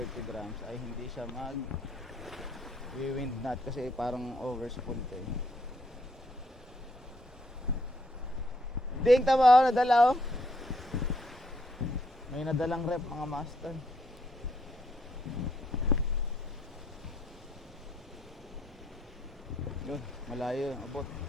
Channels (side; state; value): both; normal; correlation 0.71